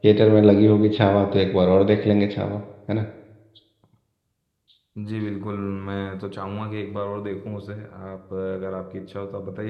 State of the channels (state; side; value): identical; both; correlation 1.00